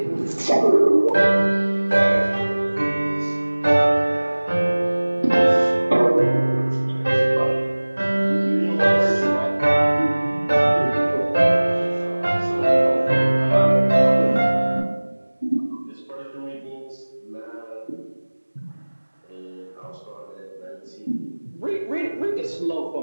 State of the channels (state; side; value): inverted; both; correlation -1.00